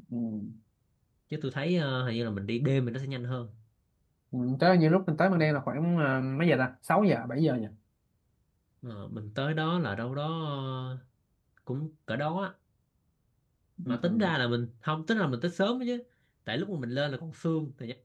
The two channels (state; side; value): identical; both; correlation 1.00